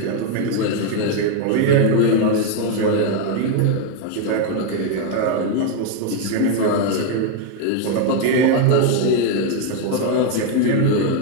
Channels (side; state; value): both; different; correlation 0.01